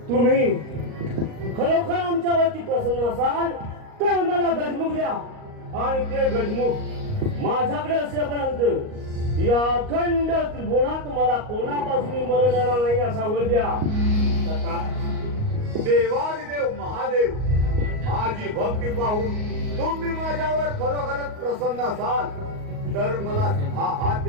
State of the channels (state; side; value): late; left; 38 ms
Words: तुम्ही खरोखर आमच्यावरती प्रसन्न असाल तर मला गजमुख द्या आणि ते गजमुख माझ्याकडे असेपर्यंत या अखंड त्रिभुवनात मला कोणापासून मरण येणार नाही असा वर द्या. देवादिदेव महादेव माझी भक्ती पाहून तुम्ही माझ्यावर खरोखरच प्रसन्न असाल तर मला 10 हात